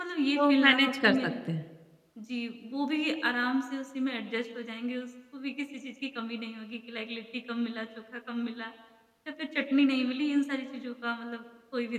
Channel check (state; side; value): identical; both; correlation 1.00